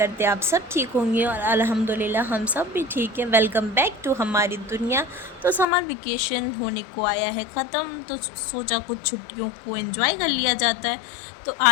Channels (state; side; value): drops out; right; at 5.7 s